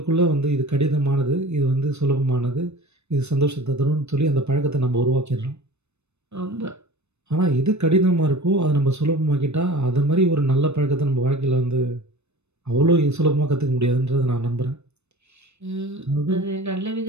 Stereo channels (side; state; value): left; late; 0.81 ms